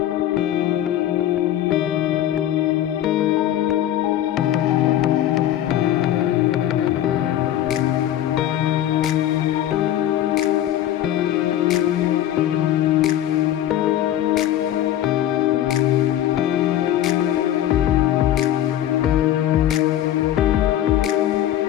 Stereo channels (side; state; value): right; quieter; 12.1 dB